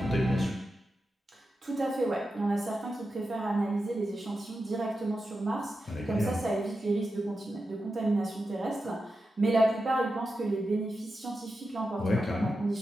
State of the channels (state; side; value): normal; both; correlation 0.90